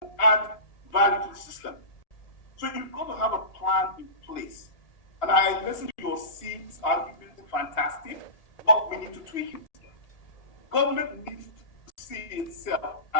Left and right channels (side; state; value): right; late; 1.8 ms